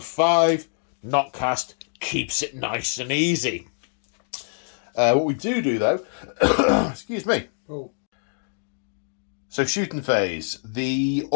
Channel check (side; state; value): right; silent; digital silence